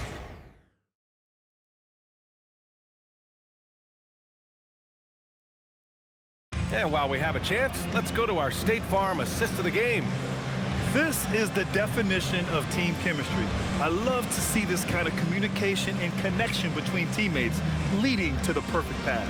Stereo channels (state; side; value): identical; both; correlation 1.00